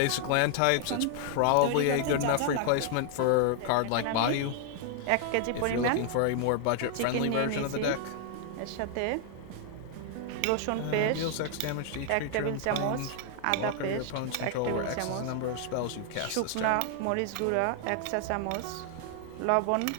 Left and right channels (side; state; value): both; different; correlation 0.00